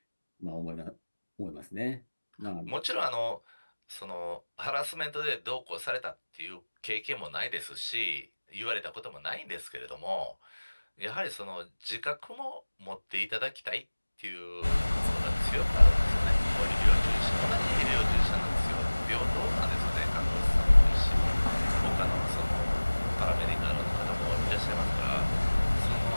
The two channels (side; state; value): both; inverted; correlation -1.00